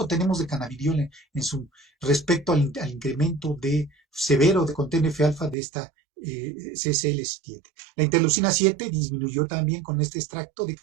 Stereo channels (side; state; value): left; drops out; at 5.6 s